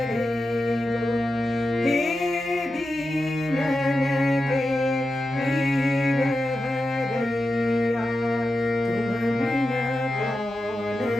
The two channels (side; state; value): both; normal; correlation 0.91